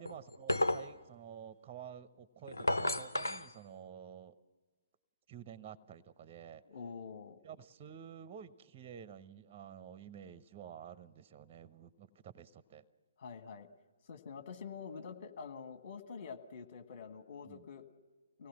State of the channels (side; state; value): both; inverted; correlation -0.81